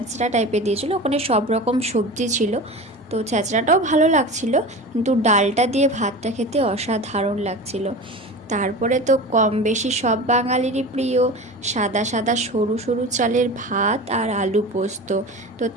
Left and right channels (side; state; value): both; normal; correlation 0.31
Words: টাইপের দিয়েছিল, ওখানে সব রকম সবজি ছিল। তো ছ্যাঁচড়াটাও ভালো লাগছিল, কিন্তু ডালটা দিয়ে ভাতটা খেতে অসাধারণ লাগছিল। তারপরে তো কম বেশি সব বাঙালিরই প্রিয় সাদা সাদা সরু সরু চালের ভাত আর আলু পোস্ত। তো